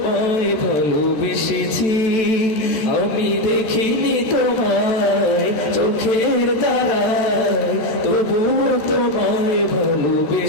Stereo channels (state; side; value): late; right; 14 ms